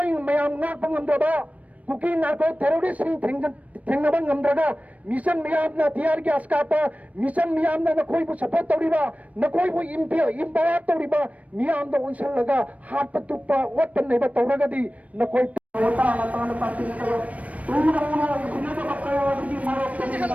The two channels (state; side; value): late; left; 0.067 ms